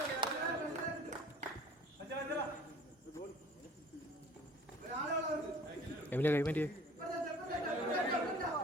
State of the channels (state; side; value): normal; both; correlation 0.49